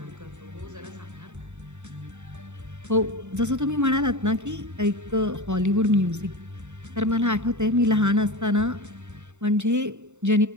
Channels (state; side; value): late; left; 0.84 ms